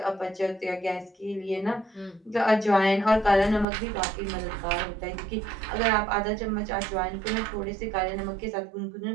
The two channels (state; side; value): drops out; left; at 3.7 s